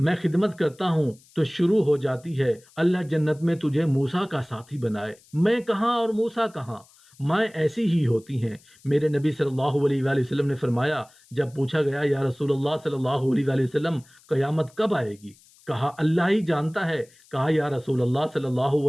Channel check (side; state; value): left; noise; hiss, 28 dB below the sound